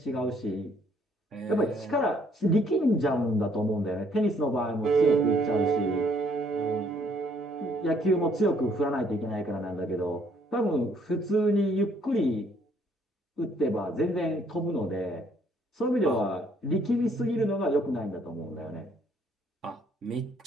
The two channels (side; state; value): both; normal; correlation 0.65